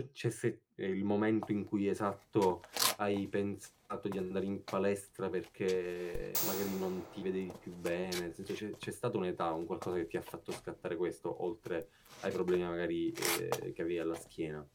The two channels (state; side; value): identical; both; correlation 1.00